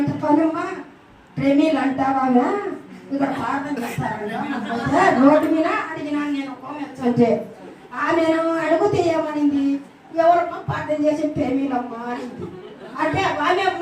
పనమ్మ ప్రేమీలు అంటావా ఇక్కడ ప్రార్థన చేస్తారంట రోడ్డు మీద అడిగినాను నేను కోమెచ్చంటే ఆమెను అడుగుతే ఏమనింది, ఎవరమ్మా ప్రార్థన చేసి ప్రేమీలమ్మా అనింది. అంటే ఆమె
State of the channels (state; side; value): identical; both; correlation 1.00